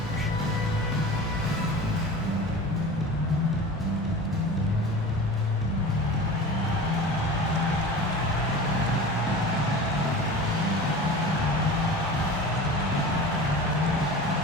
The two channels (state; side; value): normal; both; correlation 0.35